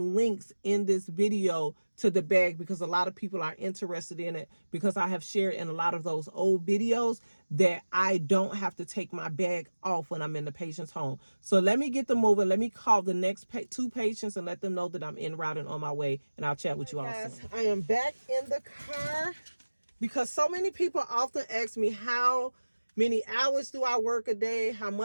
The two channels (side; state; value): both; inverted; correlation -1.00